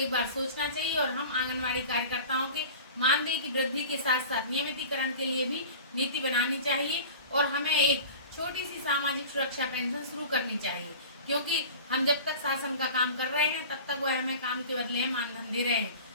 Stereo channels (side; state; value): both; inverted; correlation -0.38